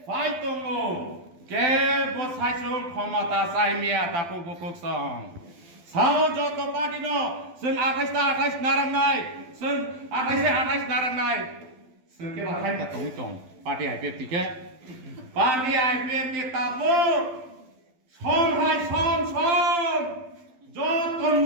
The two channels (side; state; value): left; late; 12 ms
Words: Fight tongo, ke bosai sung khomata sai mia taku bukuk song. Sao joto party no, sung atais narang nai, sung atais narang nai. Sung ke bakai ta tong tong, party IPF tike. Party IPF ti tabu, som. Joto